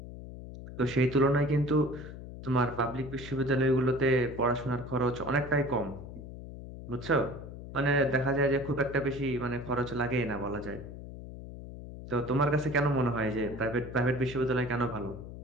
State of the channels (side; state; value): left; noise; hum, 12 dB below the sound